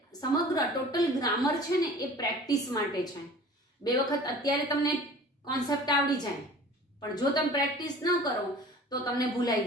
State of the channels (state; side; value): normal; both; correlation 0.44